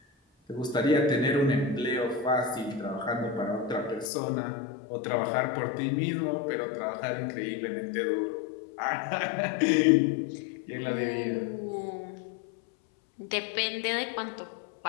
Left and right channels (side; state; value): right; drops out; at 4.1 s